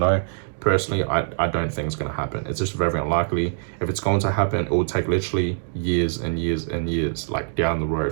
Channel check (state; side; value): silent; left; digital silence